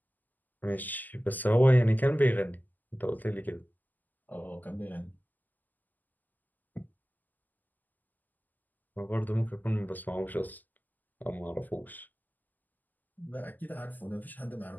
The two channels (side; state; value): right; late; 0.084 ms